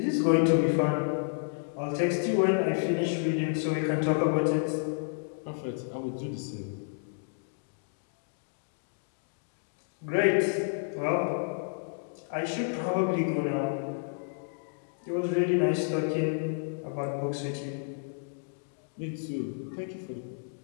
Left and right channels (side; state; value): right; silent; digital silence